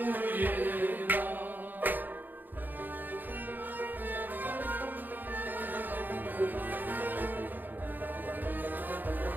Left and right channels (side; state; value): left; late; 0.089 ms